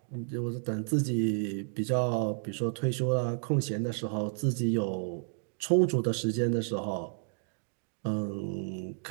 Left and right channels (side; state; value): left; silent; digital silence